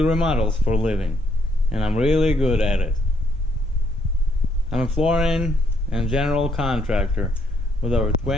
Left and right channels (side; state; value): both; normal; correlation 0.71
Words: remodels for a living, and I'm really good at it. I'm a flooring and general contractor with over